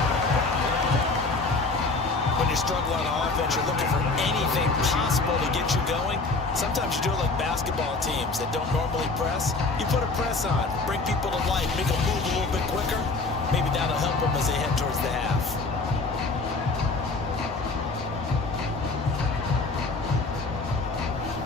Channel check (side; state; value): right; quieter; 3.7 dB